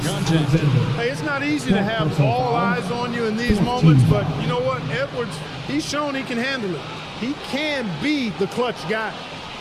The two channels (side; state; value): both; identical; correlation 1.00